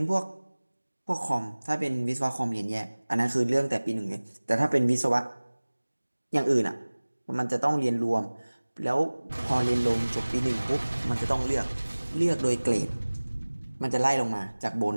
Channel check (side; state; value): both; inverted; correlation -1.00